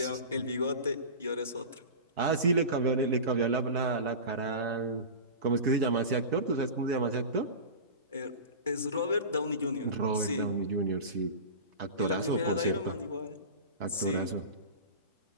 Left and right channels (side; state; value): both; inverted; correlation -0.30